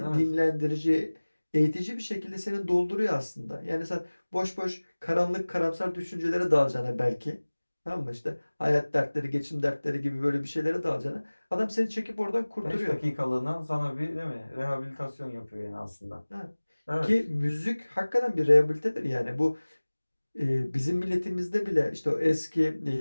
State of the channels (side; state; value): both; inverted; correlation -1.00